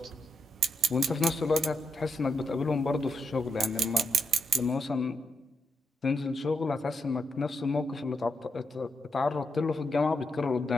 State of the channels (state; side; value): normal; both; correlation 0.83